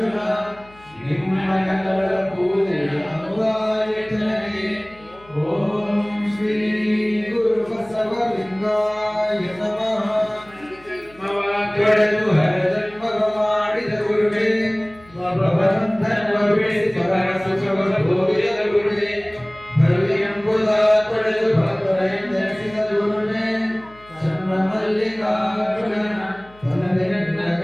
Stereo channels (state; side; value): noise; left; hum, 26 dB below the sound